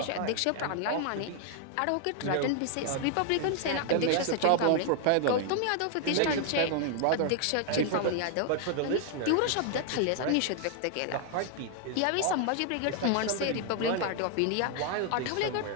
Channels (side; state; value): both; different; correlation 0.00